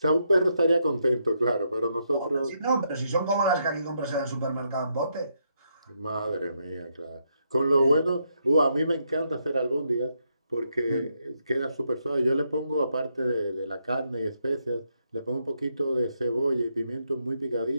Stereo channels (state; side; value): inverted; both; correlation -0.79